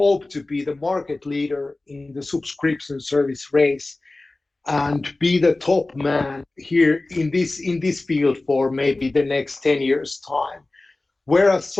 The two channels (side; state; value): right; quieter; 3.0 dB